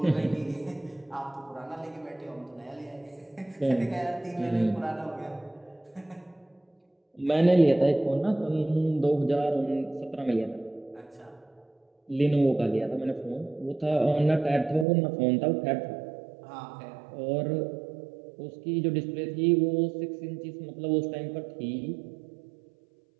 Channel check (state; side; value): drops out; left; at 14.9 s